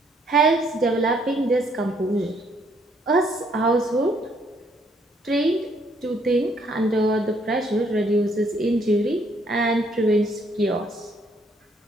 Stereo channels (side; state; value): both; normal; correlation 0.68